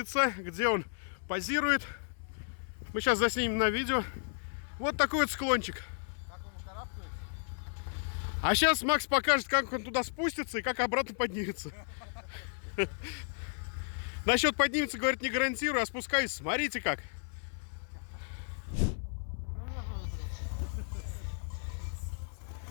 где он позирует. Мы сейчас заснимем на видео. Вот такой вот склончик. Как он карабкается? А сейчас Макс покажет, как он туда спустится и как обратно поднимется. Насчет поднимется, говорит, не гарантирую, а спускаюсь. Смотрите как.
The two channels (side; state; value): right; silent; 55 dB below the other